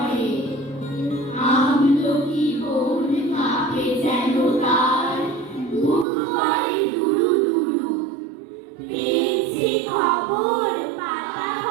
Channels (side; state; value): left; drops out; at 6.1 s